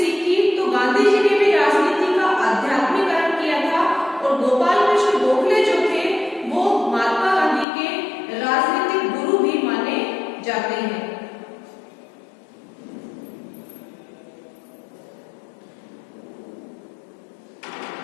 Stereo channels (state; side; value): drops out; right; at 7.7 s